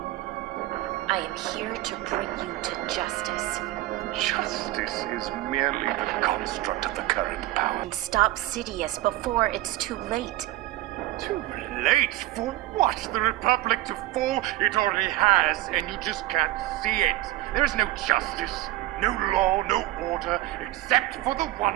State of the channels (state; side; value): quieter; left; 16.4 dB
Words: I am here to bring you to justice. Justice is merely the construct of the current power. And stop Sidious before it's too late. Too late? For what? The Republic to fall? It already has, and you just can't see it. There is no justice, no law, no order, except for the